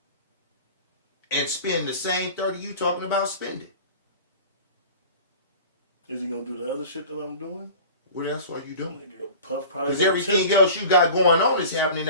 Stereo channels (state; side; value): inverted; both; correlation -0.40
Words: and spend the same 30 you talking about spending. Is he gonna do the other shit that I'm doing? What else are you doing? Nigga, Puff probably Because gonna everything tip. else you got going on is happening